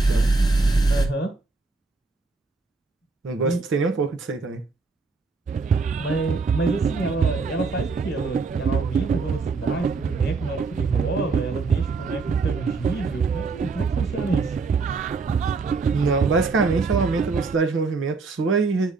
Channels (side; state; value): left; quieter; 4.2 dB